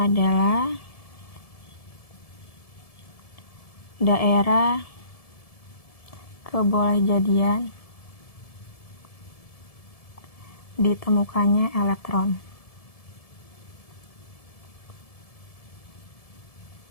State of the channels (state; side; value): late; right; 1.7 ms